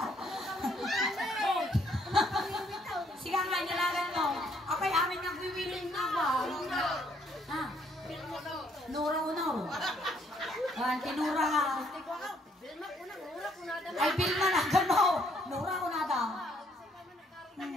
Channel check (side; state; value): both; normal; correlation 0.67